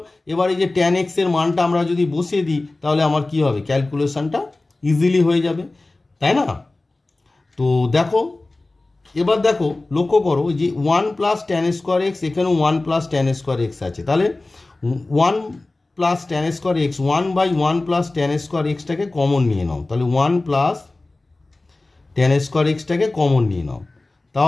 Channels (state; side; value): quieter; right; 3.0 dB